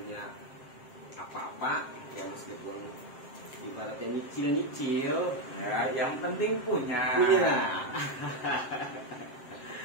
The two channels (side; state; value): right; late; 7.6 ms